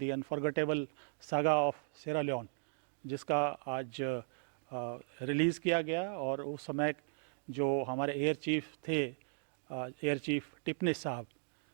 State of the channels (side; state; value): left; silent; digital silence